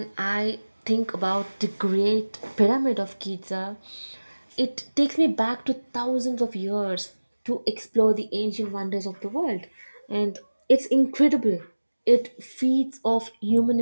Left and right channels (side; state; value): both; inverted; correlation -1.00